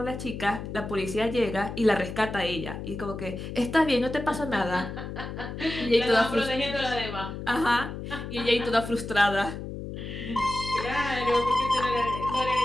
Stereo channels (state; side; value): noise; left; hum, 8 dB below the sound